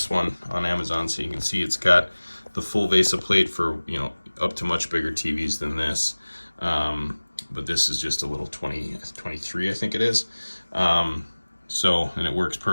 one on Amazon. So you can see it's got the full VESA plate for, up to much bigger TVs than this. But this is just a little 23, I think it is. And it works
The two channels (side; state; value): both; inverted; correlation -1.00